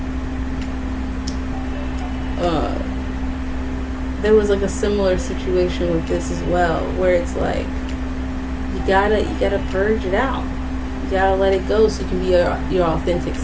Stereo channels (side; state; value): both; identical; correlation 1.00